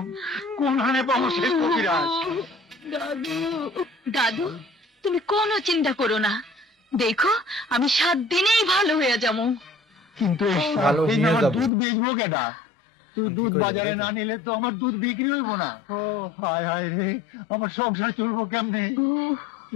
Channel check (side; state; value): right; drops out; at 11.7 s